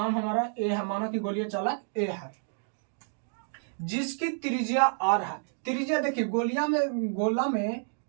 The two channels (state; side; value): silent; left; digital silence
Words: हमारा ए है। माना कि गोलीय चालक ए है जिसकी त्रिज्या आर है। त्रिज्या देखिए, गोला में